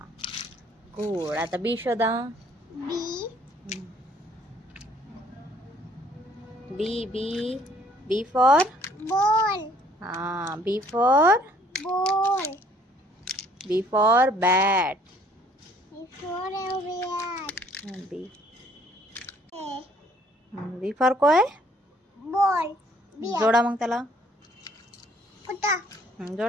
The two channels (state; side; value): normal; both; correlation 0.60